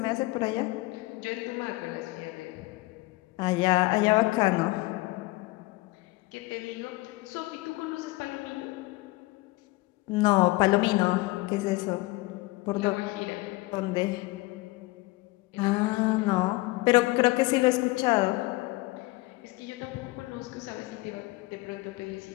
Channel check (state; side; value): quieter; right; 21.4 dB